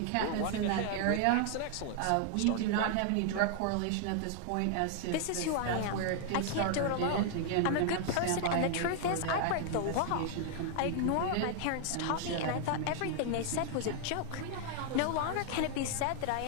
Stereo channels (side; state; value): both; different; correlation 0.00